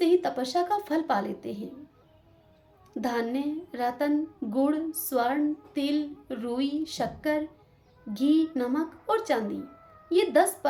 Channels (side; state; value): both; identical; correlation 1.00